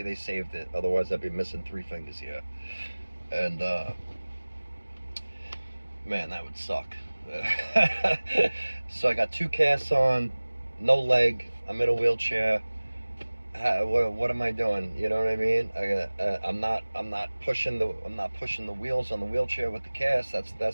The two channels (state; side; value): inverted; both; correlation -1.00